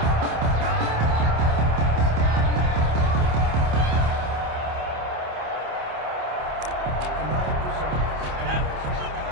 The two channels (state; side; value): late; left; 27 ms